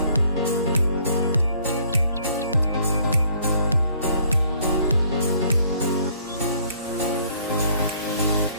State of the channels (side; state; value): both; inverted; correlation -0.62